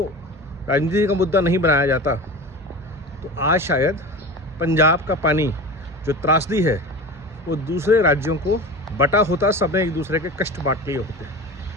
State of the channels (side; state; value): both; normal; correlation 0.32